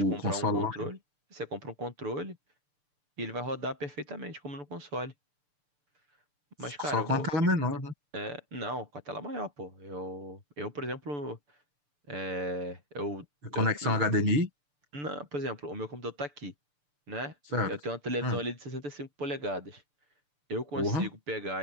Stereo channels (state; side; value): late; left; 6.8 ms